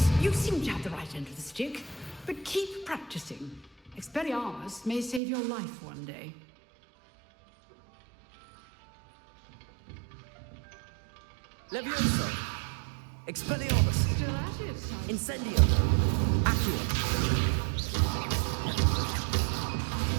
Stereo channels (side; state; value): left; drops out; at 5.2 s